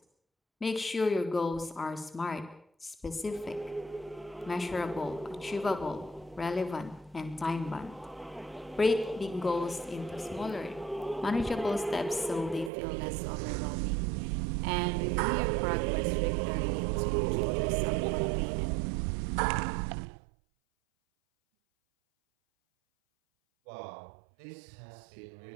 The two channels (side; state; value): left; drops out; at 12.7 s